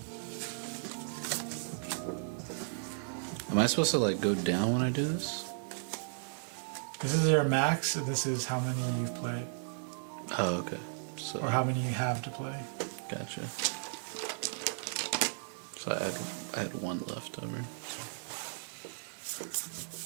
Am I supposed to like go down when I do this? This is your max, and this is how many you've played. Oh, okay. So, Or how many you have to play. gotcha. So I had one left over.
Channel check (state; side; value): silent; left; digital silence